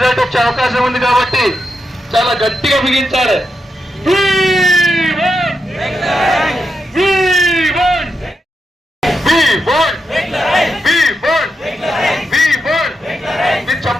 వచ్చే అవకాశం ఉంది కాబట్టి చాలా గట్టిగా బిగించాలి.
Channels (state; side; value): normal; both; correlation 0.85